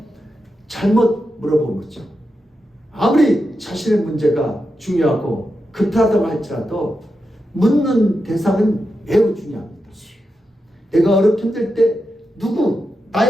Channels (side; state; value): both; normal; correlation 0.88